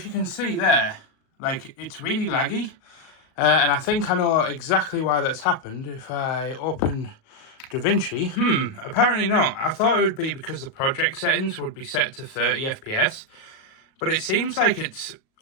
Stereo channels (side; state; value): right; late; 37 ms